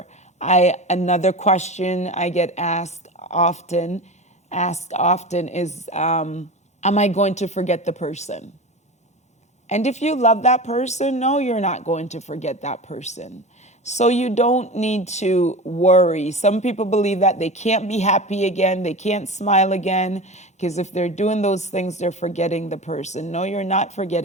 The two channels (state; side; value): normal; both; correlation 0.29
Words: Another question I get asked often is, am I going to forget the person? And if you love that person, no, you're not going to forget that person. So you don't need to worry. Some people believe that they can't be happy again, they can't smile again, because if they're doing those things, they're forgetting the person. No, you're not